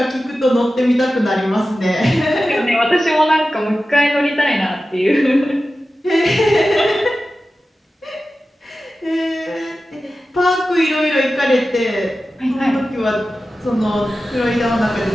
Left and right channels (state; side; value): normal; both; correlation 0.94